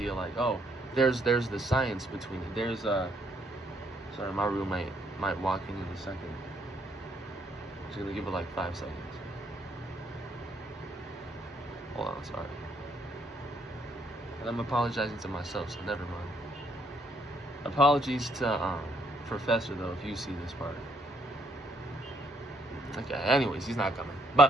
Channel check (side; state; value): both; normal; correlation 0.70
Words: like, oh, there's the science between it. There's sorry, my roommate might walk in a second. Just gonna give it like 5 seconds. Hold on, sorry. And I'm apologizing to myself, so never mind. Apologies to Professor though, if you see this part. Okay, anyways, he's not coming.